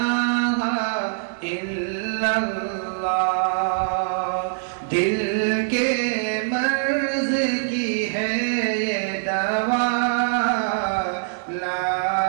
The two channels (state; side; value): silent; left; digital silence